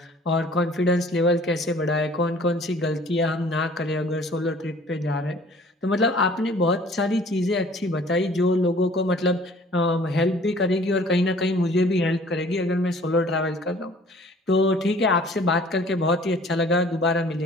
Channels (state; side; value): normal; both; correlation 0.52